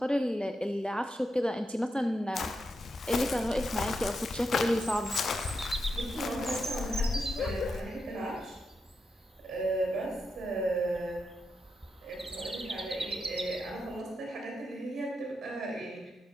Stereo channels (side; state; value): both; normal; correlation 0.85